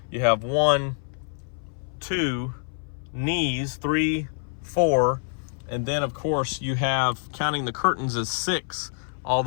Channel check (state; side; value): silent; right; 58 dB below the other